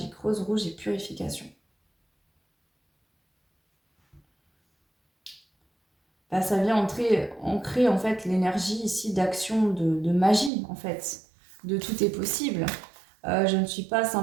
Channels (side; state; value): left; drops out; at 10.5 s